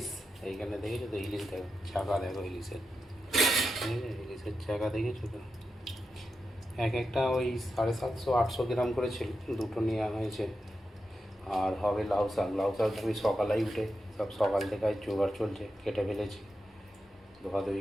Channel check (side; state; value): both; normal; correlation 0.89